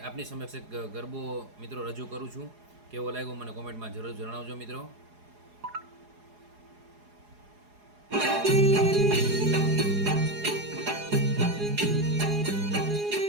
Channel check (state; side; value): late; left; 4.8 ms